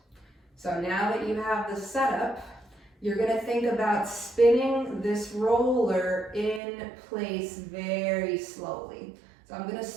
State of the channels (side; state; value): left; drops out; at 6.6 s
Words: So now that you have the setup, you're gonna think about spinning this roller in place very slowly. So I'm gonna